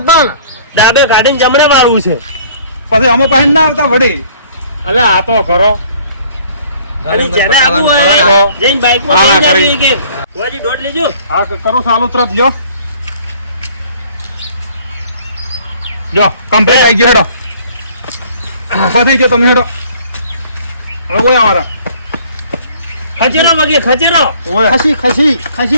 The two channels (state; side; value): inverted; both; correlation -0.55